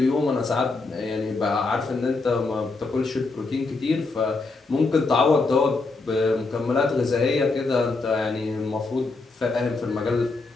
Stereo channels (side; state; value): right; quieter; 3.7 dB